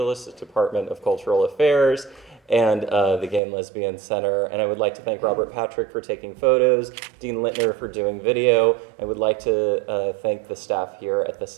Department of Cultural Affairs and the Gay and Lesbian Center. And I would like to thank Robert Patrick for taking photos, Dean Littner for doing video. I would like to thank the staff here at the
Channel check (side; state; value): left; drops out; at 3.4 s